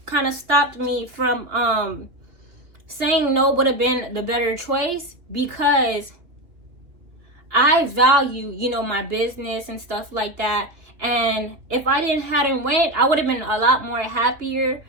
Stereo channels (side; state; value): left; late; 2.9 ms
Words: kind of stopped me from saying no would have been the better choice, because I value, my business and stuff like that. And if I hadn't went, I would have been a lot more happier,